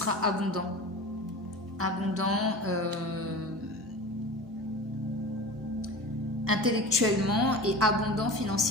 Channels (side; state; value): both; normal; correlation 0.33